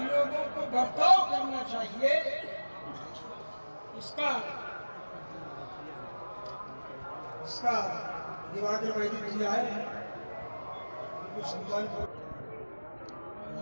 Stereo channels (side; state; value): both; inverted; correlation -1.00